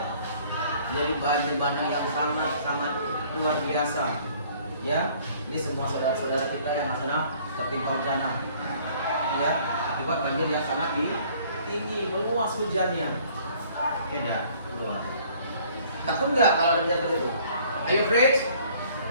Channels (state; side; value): inverted; both; correlation -0.57